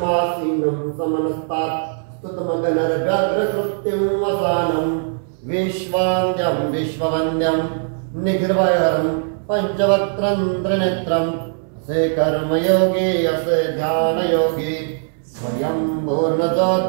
समनस्तात् स्तुतमगनर्व्यग्रकृत्तिं वसानं विश्वान्द्यं विश्ववन्द्यं निखिलभयहरं पञ्चवक्त्रं त्रिनेत्रं असे कर्मयोगी असे ध्यानयोगी स्वयं पूर्णतो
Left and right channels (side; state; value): left; silent; 63 dB below the other